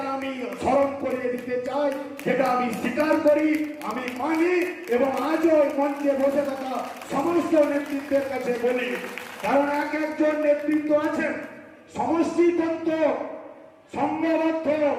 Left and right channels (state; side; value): identical; both; correlation 1.00